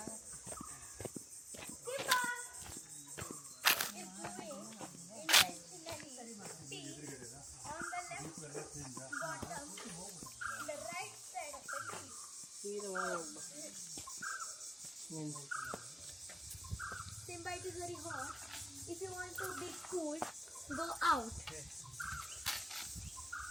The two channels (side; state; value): both; normal; correlation 0.97